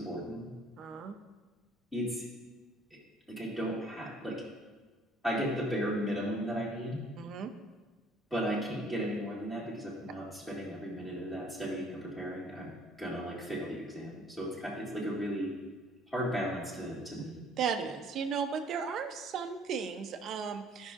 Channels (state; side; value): normal; both; correlation 0.57